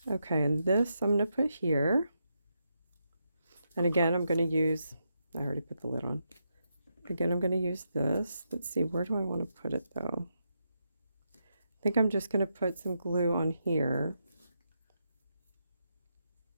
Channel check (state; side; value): inverted; both; correlation -0.83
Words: Okay, and this I'm going to put here. And again, I'm going to use, I already put the lid on. Again, I'm going to use this. Let's see, where do I want to put it though? I think I'm just going to put some glue on here.